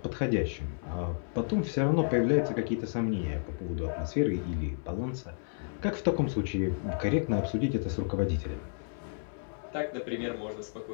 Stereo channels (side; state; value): right; silent; 57 dB below the other